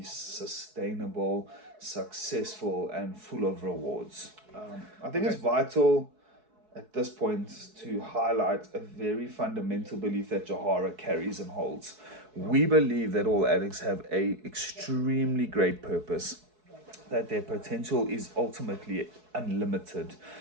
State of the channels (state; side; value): late; left; 4.7 ms